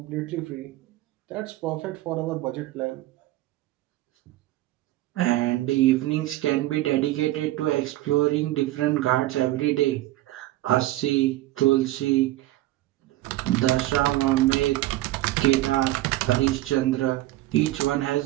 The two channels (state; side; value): quieter; left; 16.5 dB